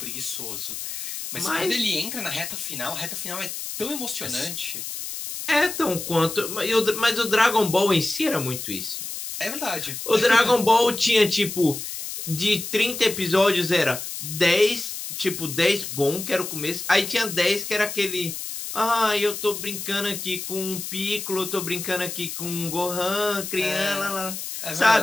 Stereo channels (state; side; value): noise; left; hiss, 7 dB below the sound